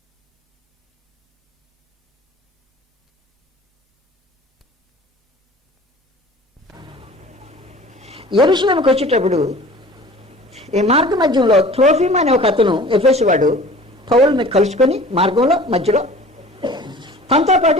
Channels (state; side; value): normal; both; correlation 0.44